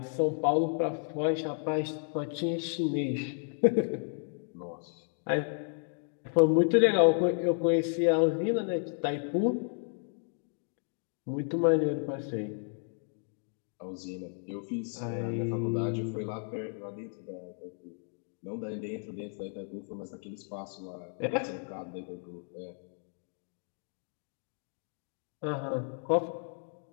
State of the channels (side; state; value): right; silent; 56 dB below the other